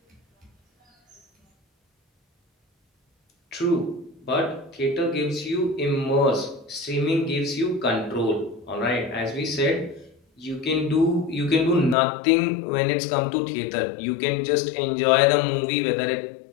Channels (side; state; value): right; drops out; at 12.0 s